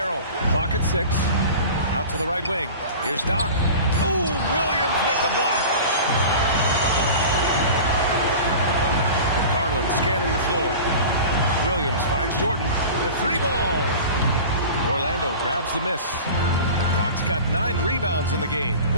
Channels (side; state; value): both; inverted; correlation -0.36